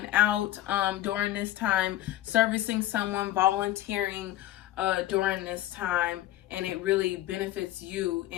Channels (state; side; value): quieter; right; 14.4 dB